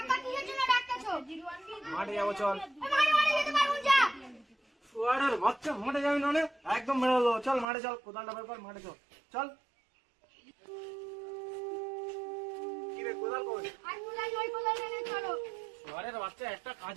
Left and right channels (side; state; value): left; drops out; at 7.7 s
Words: কিসের জন্য ডাকতেছো? মাঠে যাবো চল। মাঠে মাঠে যেতে পারবো যা। শুয়ারের বাচ্চা, মাঠে যাবি না? একদম মেরে দেবো। চল মাঠে চল, কোদালটা বের কর, মাঠে চল। চল। কি রে, কোদাল কই? আর মুলাই ওই কোলাই এনে চলো। শুয়ারের বাচ্চা একটা